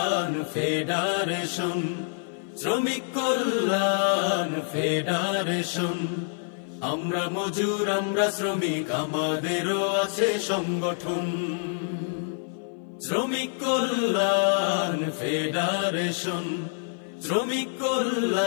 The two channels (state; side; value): silent; right; 56 dB below the other